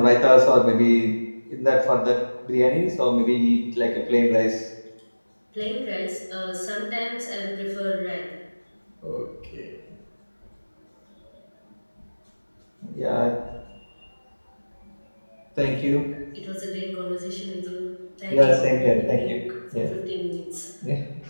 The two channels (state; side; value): inverted; both; correlation -1.00